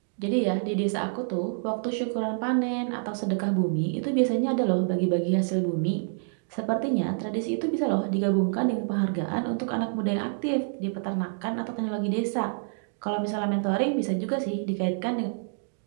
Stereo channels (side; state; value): left; silent; digital silence